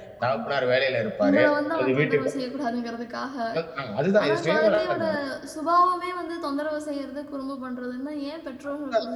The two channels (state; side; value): identical; both; correlation 1.00